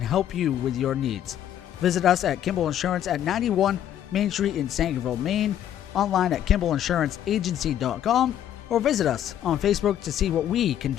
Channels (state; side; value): quieter; right; 10.7 dB